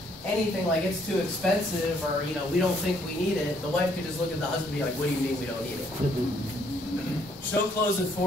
anything like it's too expensive or, you know, we don't think we need it, the wife could just look at the husband and be like, what do you mean we don't need it? She'll close it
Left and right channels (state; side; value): normal; both; correlation 0.67